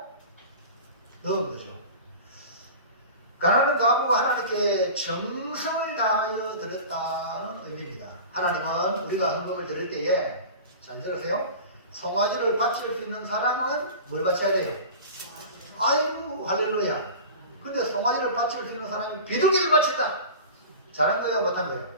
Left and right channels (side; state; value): both; inverted; correlation -0.35